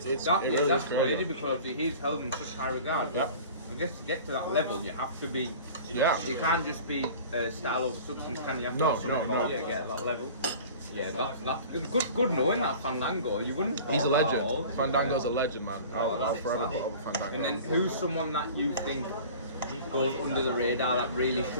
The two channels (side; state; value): both; inverted; correlation -0.42